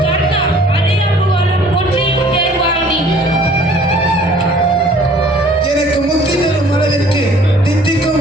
கர்த்தா, அறியப்புகழும் ஒன்றையும் தேர்வாய் நீ. எனக்கு முக்தி தரும் அளவிற்கு தித்திக்கும்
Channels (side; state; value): both; normal; correlation 0.54